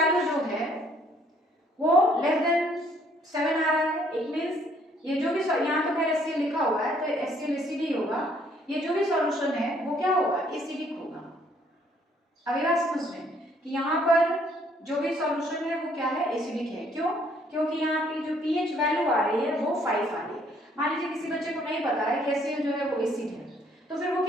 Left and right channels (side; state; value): both; normal; correlation 0.64